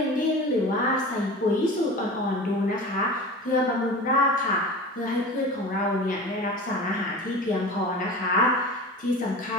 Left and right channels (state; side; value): normal; both; correlation 0.34